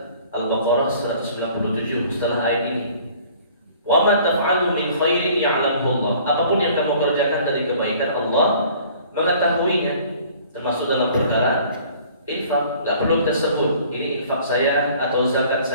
Al-Baqarah 197 setelah ayat ini. Wa ma taf'alu min khairin ya'lamuhu Allah. Apapun yang kamu kerjakan dari kebaikan, Allah mengetahuinya. Termasuk dalam perkara infak, enggak perlu kita sebut ini infak saya atau zakat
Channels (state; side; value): inverted; both; correlation -0.52